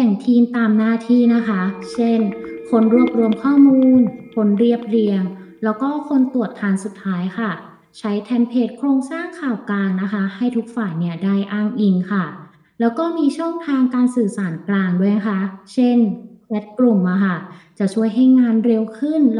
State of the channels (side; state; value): both; identical; correlation 1.00